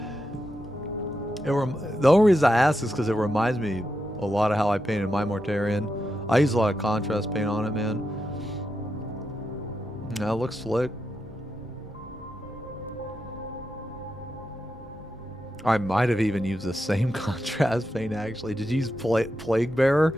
The only reason I ask is because it reminds me a lot of how I painted my Mortarion. I use a lot of contrast paint on it, man. That looks slick. I might have even used the same contrast paint, actually. Did you use Plague Bearer?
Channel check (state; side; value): normal; both; correlation 0.86